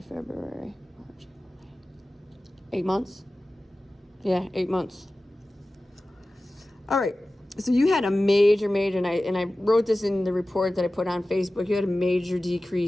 March. 8 months? Yeah, 8 months. All right, so you had a major, and I wrote this in the report that I put on Facebook. You had a major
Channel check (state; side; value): normal; both; correlation 0.96